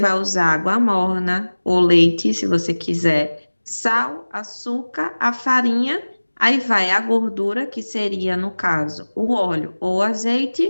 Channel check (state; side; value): inverted; both; correlation -1.00